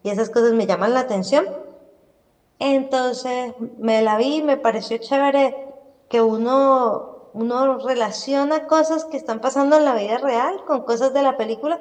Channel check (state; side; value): identical; both; correlation 1.00